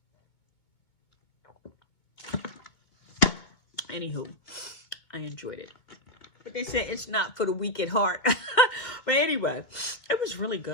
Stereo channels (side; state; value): right; late; 2.3 ms